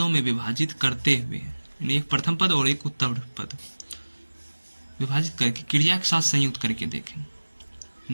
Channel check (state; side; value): inverted; both; correlation -1.00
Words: में विभाजित करते हुए, एक प्रथम पद और एक उत्तर पद विभाजित करके क्रिया के साथ संयुक्त करके देखें।